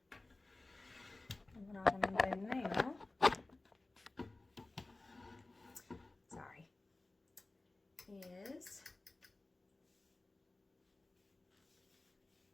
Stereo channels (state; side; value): quieter; right; 3.0 dB